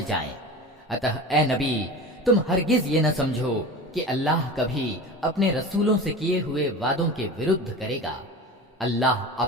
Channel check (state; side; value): normal; both; correlation 0.32